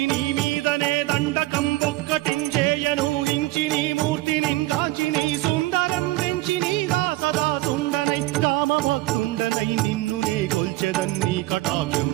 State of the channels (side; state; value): left; quieter; 19.4 dB